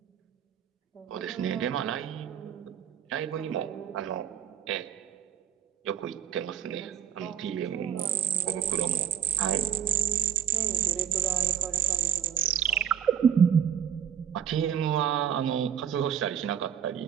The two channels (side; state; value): left; quieter; 8.7 dB